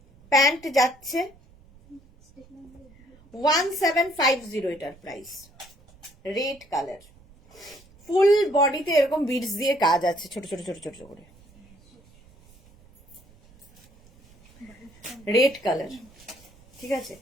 প্যান্ট যাচ্ছে 1750 এটার প্রাইস। রেড কালার, ফুল বডিতে এরকম বিডস দিয়ে কাজ আছে, ছোট ছোট ছোট ছোট করে। রেড কালার, ঠিক আছে।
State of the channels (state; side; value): noise; right; rumble, 27 dB below the sound